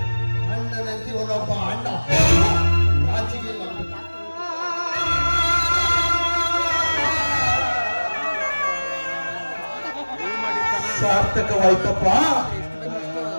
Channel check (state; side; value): inverted; both; correlation -1.00